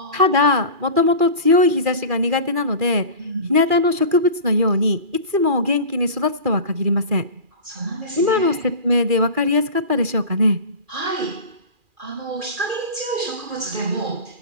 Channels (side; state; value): left; late; 2.4 ms